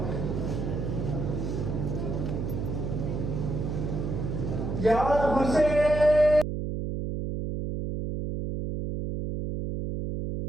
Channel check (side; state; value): right; noise; hum, 3 dB below the sound